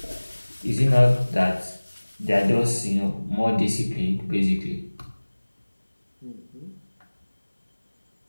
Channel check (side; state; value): both; inverted; correlation -1.00